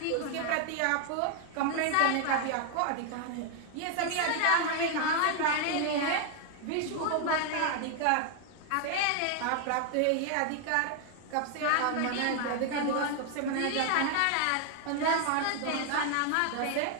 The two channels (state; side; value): different; both; correlation 0.00